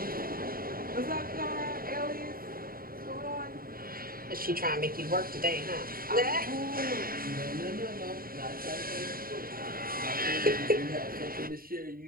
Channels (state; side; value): late; left; 0.42 ms